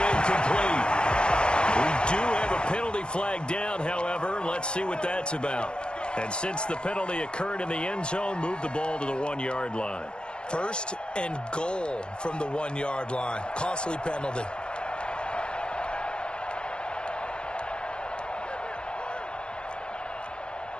incomplete. We do have a penalty flag down, however. Let's see what that's about. And since the penalty occurred in the end zone, move the ball to the 1-yard line. 1st and goal from the 1-yard line. Costly penalty.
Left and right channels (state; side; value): late; right; 0.053 ms